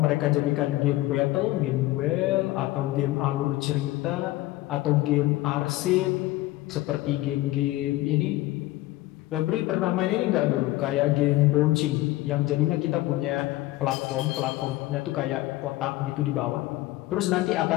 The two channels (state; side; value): quieter; right; 17.6 dB